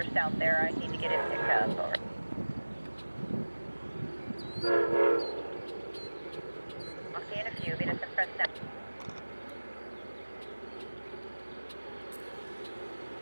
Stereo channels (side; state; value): both; inverted; correlation -1.00